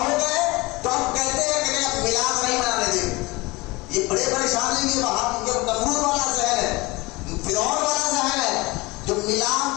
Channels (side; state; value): right; quieter; 23.0 dB